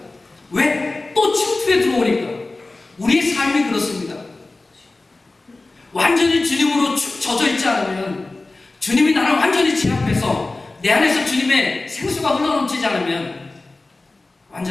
왜? 또 침투에 들어오니까. 우리의 삶이 그렇습니다. 완전히 주님으로 축 젖어 있지 않으면, 주님이 나를 완전히 제압해서 내 안에서 주님의 생수가 흘러넘치지 않으면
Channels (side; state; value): right; quieter; 3.2 dB